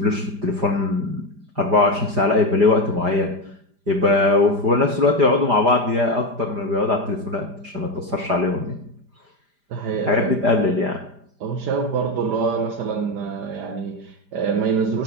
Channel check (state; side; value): late; left; 5.0 ms